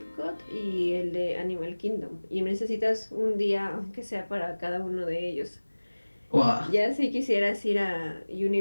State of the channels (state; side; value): inverted; both; correlation -1.00